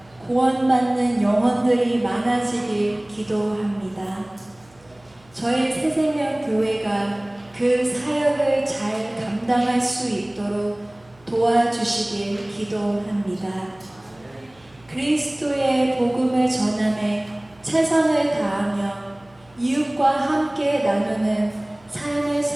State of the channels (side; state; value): right; noise; hum, 29 dB below the sound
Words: 구원받는 영혼들이 많아지길 기도합니다. 저희 새생명교회가 그 사역을 잘 감당할 수 있도록 도와주시길 기도합니다. 그리스도의 복음을 전함에 최선을 다하며 이웃과 함께 나누는 삶을